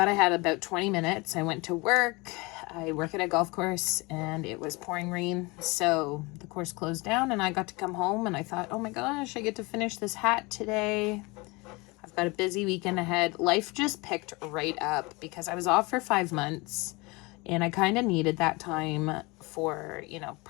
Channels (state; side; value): quieter; right; 25.5 dB